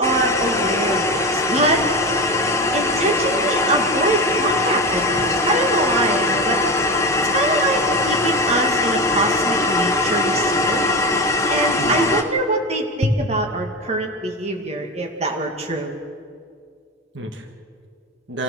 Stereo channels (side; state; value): both; normal; correlation 0.22